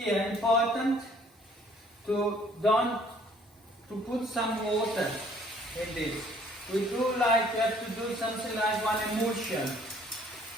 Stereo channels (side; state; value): both; normal; correlation 0.59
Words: important to put some water in this. We do like, we have to do something like one emulsion.